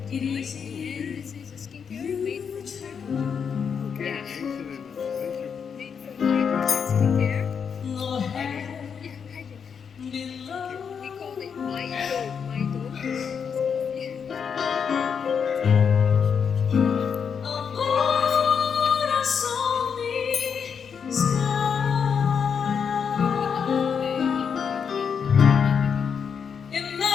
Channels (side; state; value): right; quieter; 6.8 dB